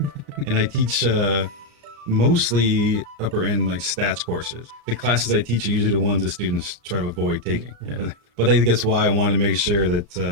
And I teach mostly upper end like stats courses. The classes I teach are usually the ones that students try to avoid taking. Yeah. But I think that's why I wanted to make sure that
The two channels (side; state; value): left; late; 35 ms